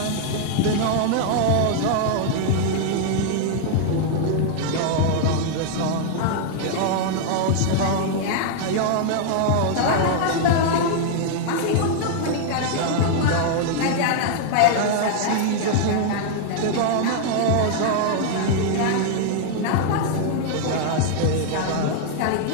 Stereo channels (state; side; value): different; both; correlation 0.00